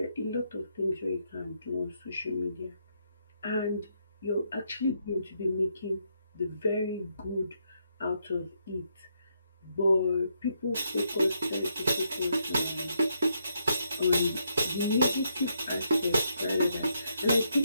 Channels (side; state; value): both; inverted; correlation -0.77